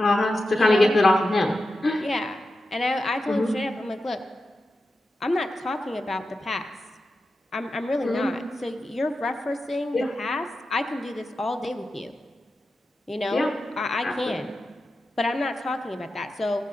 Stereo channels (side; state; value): both; normal; correlation 0.91